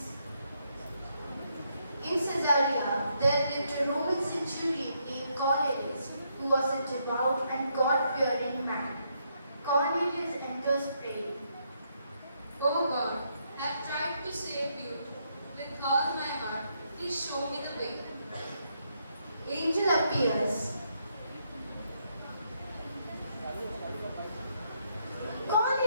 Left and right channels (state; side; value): inverted; both; correlation -0.76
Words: In Caesarea, there lived a Roman centurion named Cornelius, who was a devout and God-fearing man. Cornelius enters praying. O God, I have tried to save you with all my heart. Please show me the way. Angel appears.